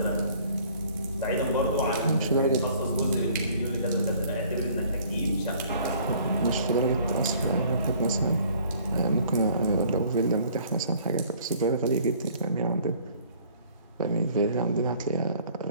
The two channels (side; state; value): both; inverted; correlation -0.56